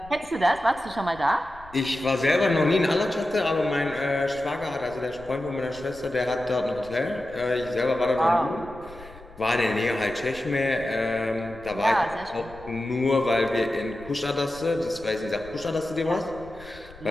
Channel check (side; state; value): left; noise; rumble, 21 dB below the sound